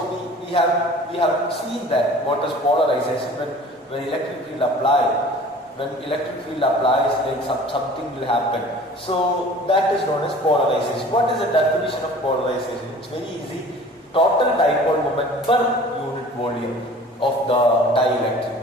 we have seen that what is polarization when electric field applies. When electric field applies, like something will happen. So that is known as polarization. What is the definition of polarization? It's very easy. Total dipole moment per unit volume of the dielectric.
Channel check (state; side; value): normal; both; correlation 0.46